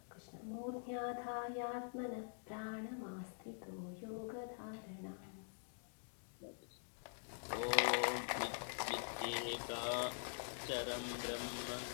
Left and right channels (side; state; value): right; silent; digital silence